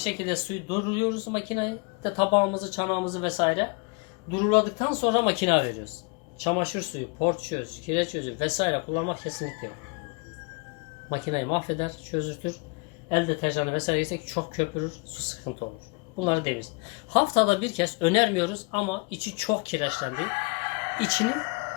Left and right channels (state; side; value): quieter; right; 31.1 dB